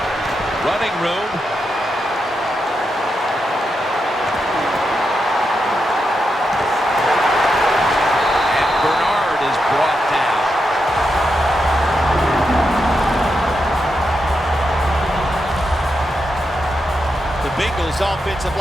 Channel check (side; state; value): both; normal; correlation 0.85